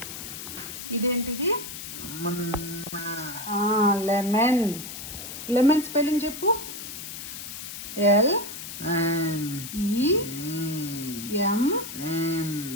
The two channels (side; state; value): left; noise; hiss, 9 dB below the sound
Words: ఇదేంటిది? లెమన్. లెమన్ స్పెల్లింగ్ చెప్పు. LEMON.